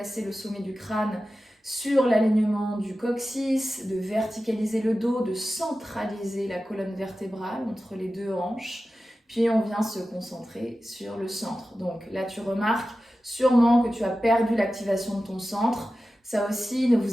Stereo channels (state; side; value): normal; both; correlation 0.94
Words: le sommet du crâne sur l'alignement du coccyx, de verticaliser le dos, de centraliser la colonne vertébrale entre les deux hanches. Puis on vient se concentrer sur le centre. Donc là, tu remarques sûrement que tu as perdu l'activation de ton centre. Ça aussi, ne